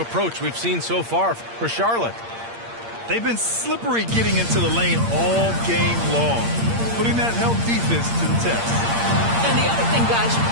we've seen so far for Charlotte? They've been slippery getting into the lane all game long, putting that help defense to the test. And the other thing, guys,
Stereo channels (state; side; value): late; left; 8.7 ms